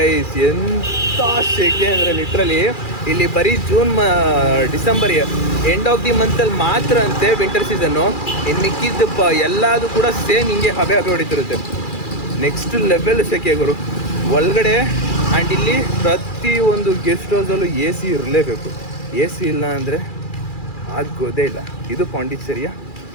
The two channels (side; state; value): right; late; 2.4 ms